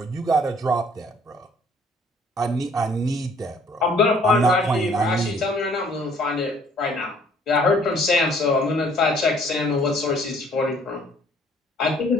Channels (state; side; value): normal; both; correlation 0.59